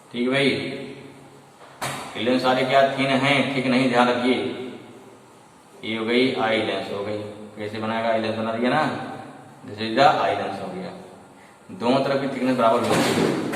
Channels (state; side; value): identical; both; correlation 1.00